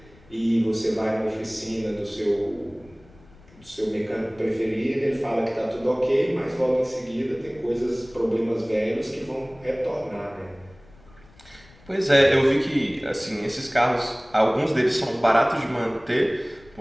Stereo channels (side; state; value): left; noise; rumble, 26 dB below the sound